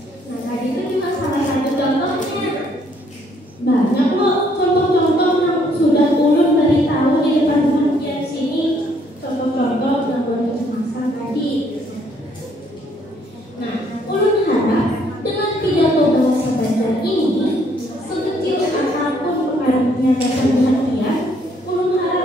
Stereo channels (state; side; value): normal; both; correlation 0.67